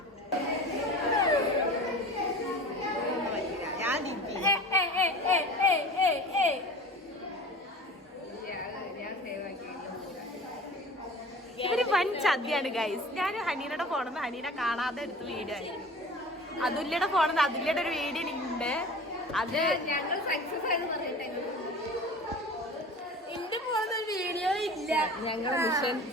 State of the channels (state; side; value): normal; both; correlation 0.39